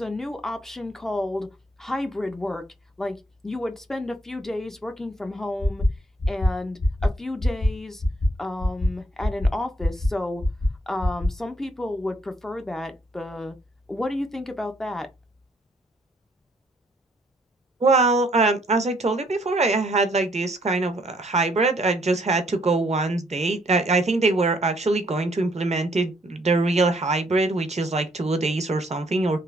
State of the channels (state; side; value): normal; both; correlation 0.68